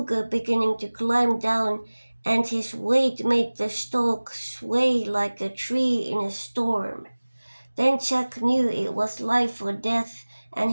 beginning to climb down, and his weight made the stalk sway like a tree in a storm. Then Jack knew it was life or death, and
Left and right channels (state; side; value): inverted; both; correlation -1.00